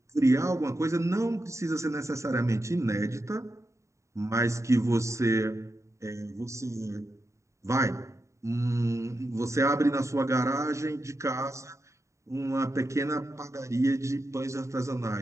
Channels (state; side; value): late; left; 0.14 ms